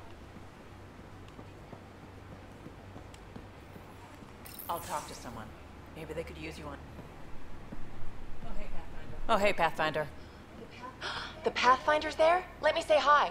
I'll talk to someone. Maybe they could use you on. Oh, hey, Pathfinder. The Pathfinder's there? Let me say hi.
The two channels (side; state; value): both; identical; correlation 1.00